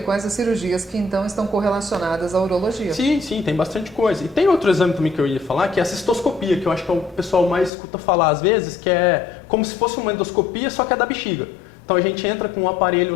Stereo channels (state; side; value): drops out; right; at 7.7 s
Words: as cirurgias que então estão correlacionadas à urologia. Sim, tem bastante coisa. E tem outro exame também que eu ia falar, que é a cistoscopia, que eu acho que o pessoal mais escuta falar às vezes, que é como se fosse uma endoscopia, só que é da bexiga. Então a gente entra com um aparelho